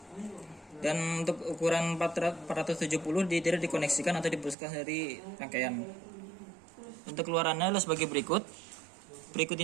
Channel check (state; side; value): drops out; left; at 4.5 s